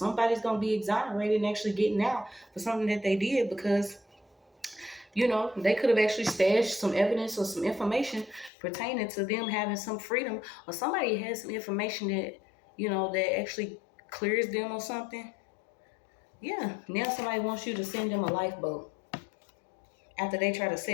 going to be exonerated and actually getting out for something that they did because, you know, they could have actually stashed some evidence or some information pertaining to them having some freedom, or somebody has some information that, you know, that actually clears them or something. Yeah, now somebody wants you to send them a lifeboat after they try to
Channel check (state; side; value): drops out; right; at 8.5 s